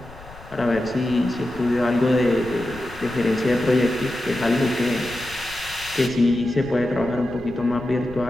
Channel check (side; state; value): left; noise; rumble, 18 dB below the sound